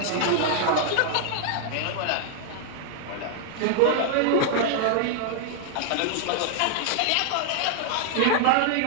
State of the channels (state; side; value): different; both; correlation 0.00